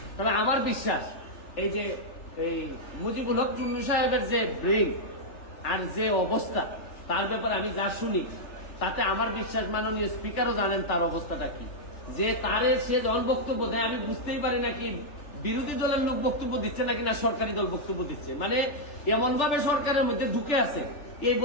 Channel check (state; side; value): late; right; 3.4 ms